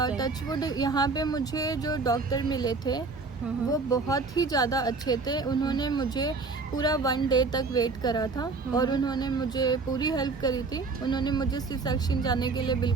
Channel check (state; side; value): quieter; left; 4.1 dB